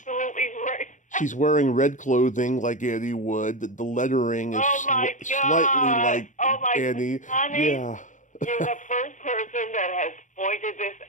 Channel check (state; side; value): late; right; 0.37 ms